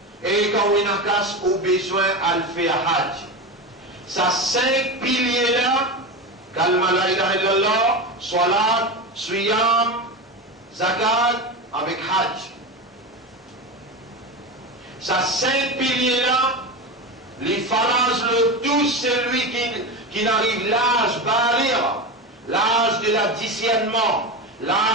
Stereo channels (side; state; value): both; normal; correlation 0.21